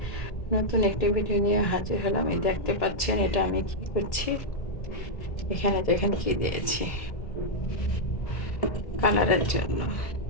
নতুন একটি ভিডিও নিয়ে হাজির হলাম। এই দেখতে পাচ্ছেন এটা আমি কি করছি। এখানে দেখেন কি দিয়েছি কালারের জন্য।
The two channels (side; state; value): right; late; 1.7 ms